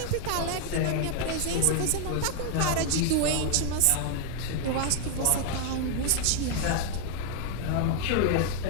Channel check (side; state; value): both; different; correlation 0.00